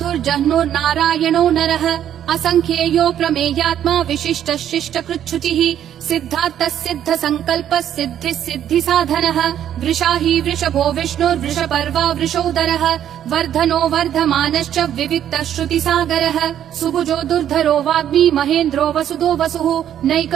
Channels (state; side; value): quieter; left; 10.3 dB